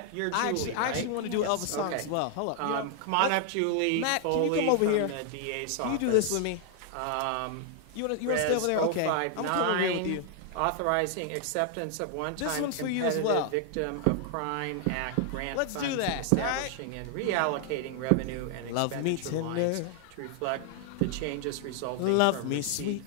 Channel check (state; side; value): different; both; correlation 0.00